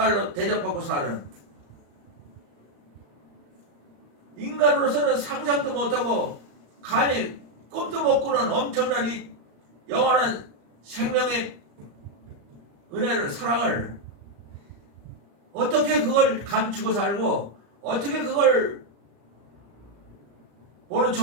대접받고 사는 인간으로서는 상상도 못하고 감히 꿈도 못 꾸는 엄청난 이 영원한 생명의 은혜를 사랑을 어떻게 그걸 감추고 살고 어떻게 그걸 모른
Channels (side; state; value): left; late; 35 ms